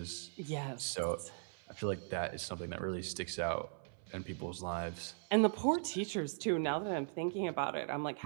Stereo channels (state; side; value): silent; left; 52 dB below the other